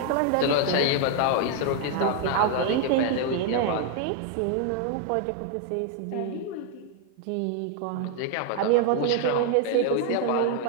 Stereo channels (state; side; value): different; both; correlation 0.00